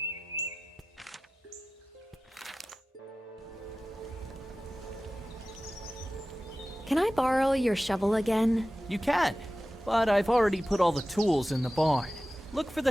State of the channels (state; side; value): normal; both; correlation 0.95